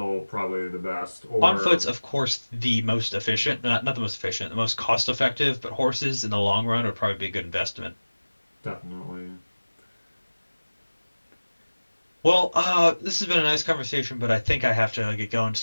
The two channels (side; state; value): both; inverted; correlation -1.00